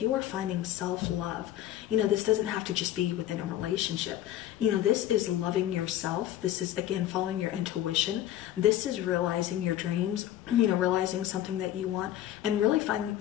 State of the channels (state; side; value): quieter; right; 12.5 dB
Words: you are finding self-love. You know, this doesn't have to just be within a relationship. You know, this is loving yourself. This is, again, following your intuition. This is realizing your dreams, you know, realizing something that you want, and really